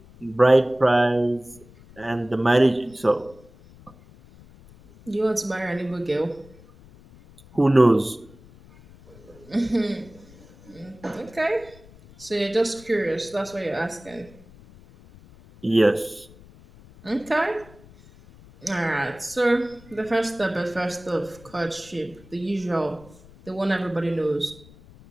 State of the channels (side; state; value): left; noise; rumble, 23 dB below the sound